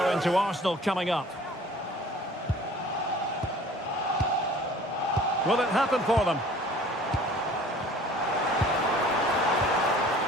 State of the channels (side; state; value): both; normal; correlation 0.49